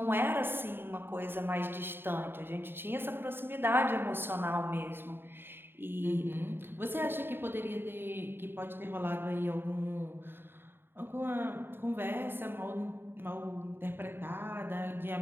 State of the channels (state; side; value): late; left; 0.10 ms